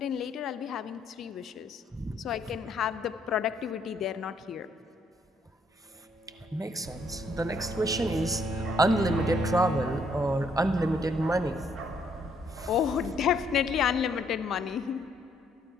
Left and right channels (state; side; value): normal; both; correlation 0.70